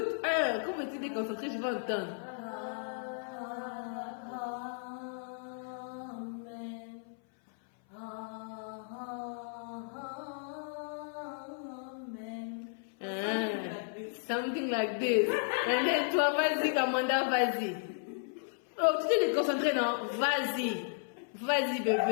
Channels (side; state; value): right; silent; 55 dB below the other